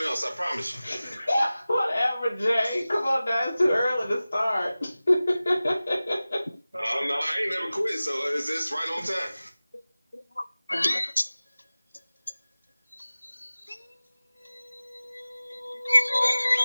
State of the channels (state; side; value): inverted; both; correlation -0.97